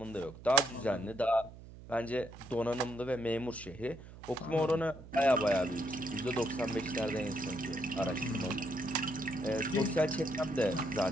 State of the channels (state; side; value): noise; right; hum, 16 dB below the sound